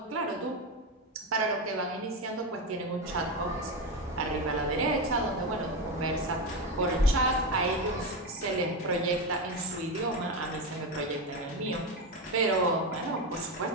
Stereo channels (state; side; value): normal; both; correlation 0.14